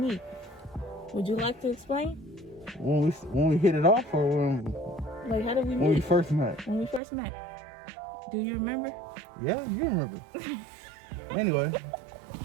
Would you like to explain? When we hit it off, or like, how did we meet? When we first met. When we first met. Do you remember? Yeah, you remember. Anyway.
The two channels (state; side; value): drops out; left; at 7.0 s